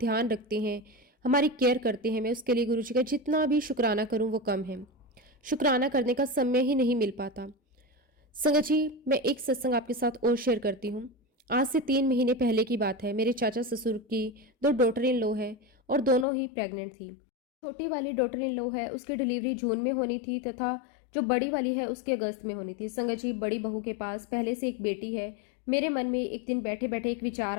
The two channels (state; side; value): drops out; right; at 16.2 s